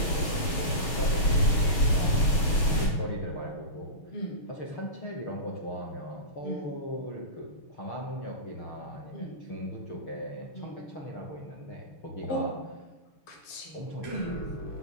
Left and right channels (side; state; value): right; late; 6.8 ms